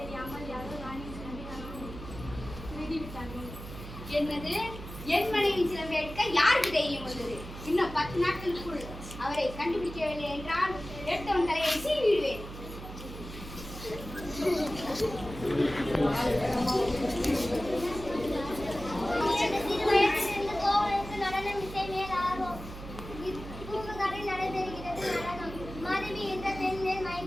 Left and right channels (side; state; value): right; noise; hum, 12 dB below the sound